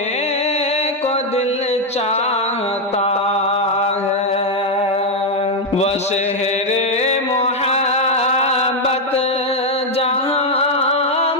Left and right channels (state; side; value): normal; both; correlation 0.02